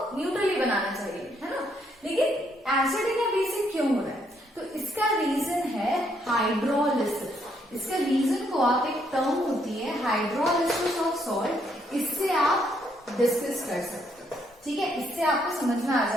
न्यूट्रल ही बनाना चाहिए, है ना। लेकिन एसिडिक या बेसिक क्यों हो रहा है? तो इसका रीजन है हाइड्रोलिसिस। इसका रीजन को आप एक टर्म होती है हाइड्रोलिसिस ऑफ सॉल्ट, इससे आप डिस्कस कर सकते हो, ठीक है। इससे आपको समझ में आ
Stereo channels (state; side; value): normal; both; correlation 0.72